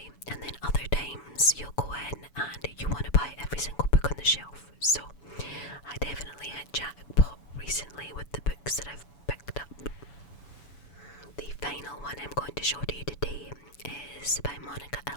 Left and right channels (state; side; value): late; right; 7.0 ms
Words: And then other times you'll go in and you want to buy every single book on the shelf. So I definitely hit jackpot recently with the books that I've picked up. The final one I'm going to show to you today is by Monica